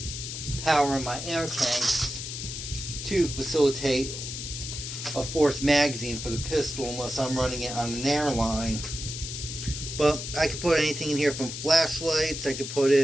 power in my air tanks to facilitate a fourth magazine for the pistol unless I'm running it on an airline. But I could put anything in here from flashlights. I could put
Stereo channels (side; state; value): left; noise; hiss, 7 dB below the sound